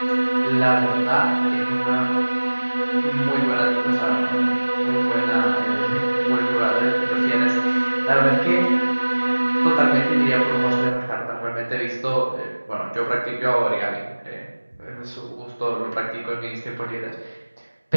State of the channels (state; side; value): inverted; both; correlation -1.00